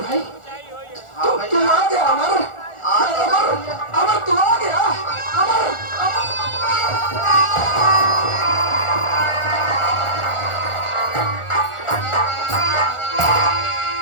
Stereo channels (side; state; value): right; late; 1.4 ms